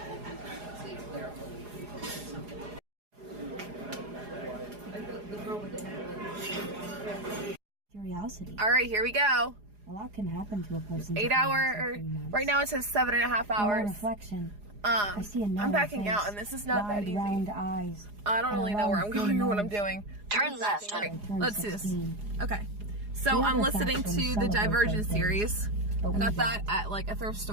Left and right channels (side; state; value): left; late; 4.8 ms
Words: Curiosity. All right, here we go. A lot can happen to a person. 8 hour, right now it says 7.5 hours. Reflection. I see a I'm backing out, and this is not that easy. Round eyes. I don't really know where I'm going or what I'm doing. Turn left. Let's do this. Okay. So I'm listening to the Divergent series. I got that at like a thrift